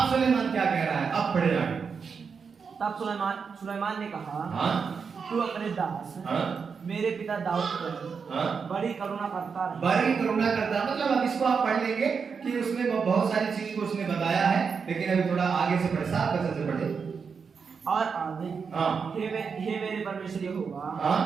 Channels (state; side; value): quieter; left; 5.8 dB